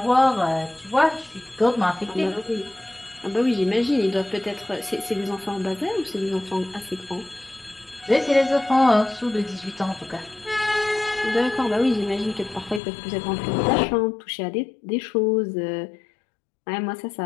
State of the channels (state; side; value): drops out; right; at 12.8 s